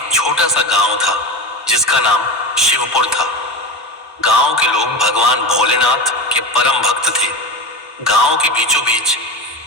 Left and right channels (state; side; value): normal; both; correlation 0.22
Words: छोटा सा गांव था जिसका नाम शिवपुर था। गांव के लोग भगवान भोलेनाथ के परम भक्त थे। गांव के बीचों बीच